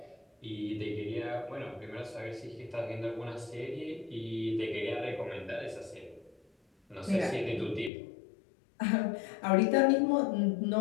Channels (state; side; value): drops out; right; at 7.9 s